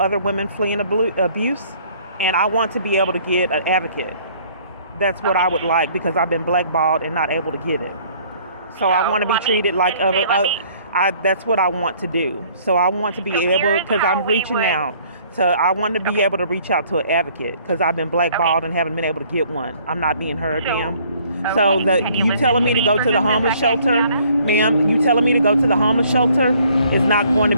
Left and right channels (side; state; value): both; inverted; correlation -0.59